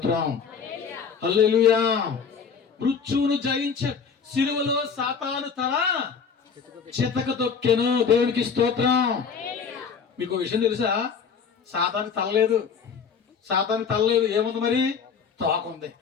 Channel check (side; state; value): right; quieter; 6.2 dB